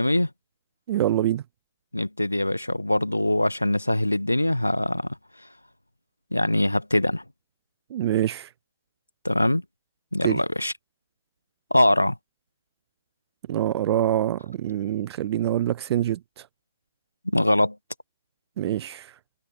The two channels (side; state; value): both; inverted; correlation -0.80